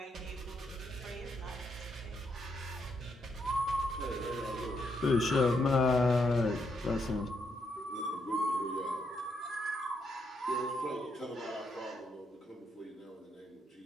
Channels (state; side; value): normal; both; correlation 0.77